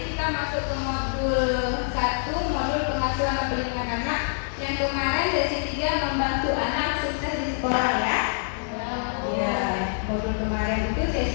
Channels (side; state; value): right; silent; digital silence